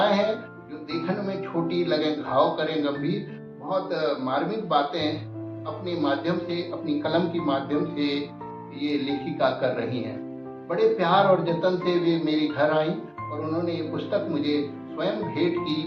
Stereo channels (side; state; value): both; identical; correlation 1.00